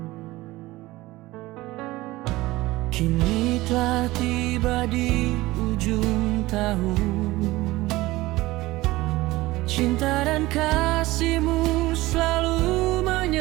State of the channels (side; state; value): left; quieter; 18.9 dB